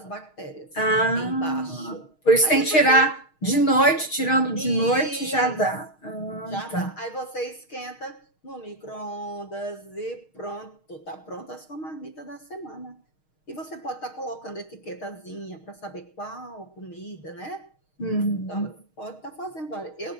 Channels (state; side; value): late; right; 6.4 ms